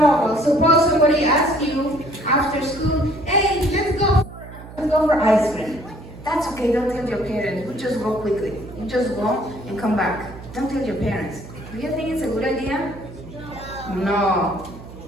Suppose somebody asks you after school, hey, let's go for ice cream. That's okay, don't tell your parents. You just go quickly. You just go and come back. Don't tell your parents. Do you think it's a good idea? No.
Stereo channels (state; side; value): noise; right; hum, 15 dB below the sound